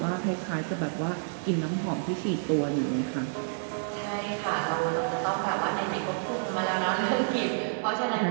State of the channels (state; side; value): silent; left; digital silence